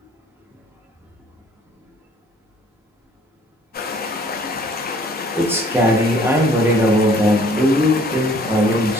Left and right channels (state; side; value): normal; both; correlation 0.57